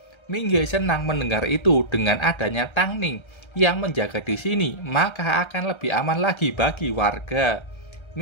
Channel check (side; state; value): right; late; 1.3 ms